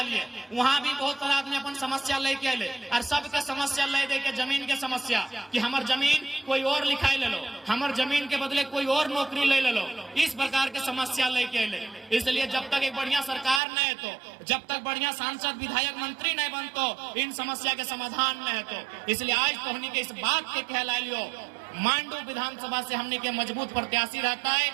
वहाँ भी बहुत सारा आदमी अपन समस्या लेके आए, और सबके समस्या ले दे के जमीन के समस्या कि हमार जमीन कोई और लिखाई ले लो, हमार जमीन के बदले कोई और नौकरी ले लो, इस प्रकार के समस्या लेके आए। इसलिए जब तक एक बढ़िया सरकार न है, तो जब तक बढ़िया सांसद विधायक मंत्री नहीं बनतो, इन समस्या के समाधान न है। तो इसलिए आज तो हमने के इस बात के कहला लियो, मांडू विधानसभा से हमने के मजबूत प्रत्याशी रहता है,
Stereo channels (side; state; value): left; drops out; at 13.6 s